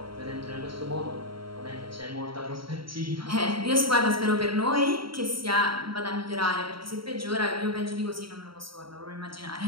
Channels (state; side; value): late; left; 0.74 ms